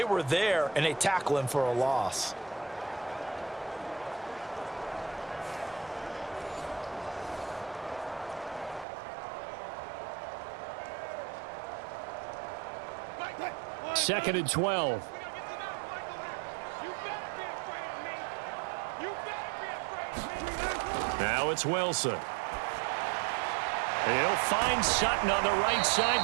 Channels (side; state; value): left; drops out; at 8.8 s